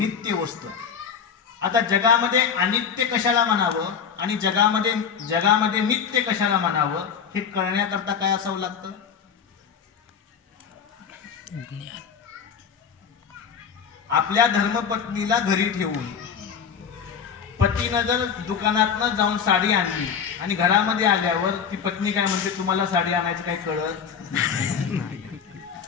वस्तू आहे. आता जगामध्ये अनित्य कशाला म्हणावं आणि जगामध्ये नित्य कशाला म्हणावं हे कळण्याकरता काय असावं लागतं, आपल्या धर्मपत्नीला घरी ठेवून पतीनं जर दुकानातनं जाऊन साडी आणली आणि घरामध्ये आल्यावर ती पत्नी काय म्हणते, तुम्हाला साडी आणायचं काय कळत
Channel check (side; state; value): right; quieter; 6.9 dB